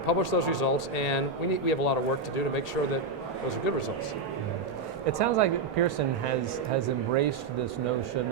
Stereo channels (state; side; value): quieter; left; 3.9 dB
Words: publish those results, and we have a lot of work to do to make sure that those are good results. It sounds like Pearson has embraced this notion